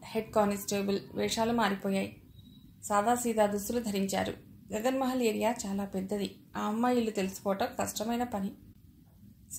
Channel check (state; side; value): identical; both; correlation 1.00